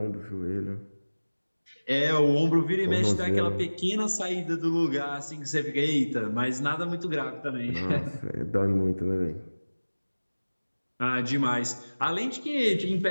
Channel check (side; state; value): both; inverted; correlation -1.00